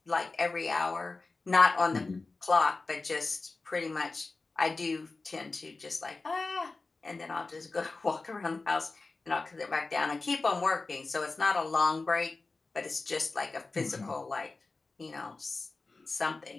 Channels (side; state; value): right; quieter; 3.7 dB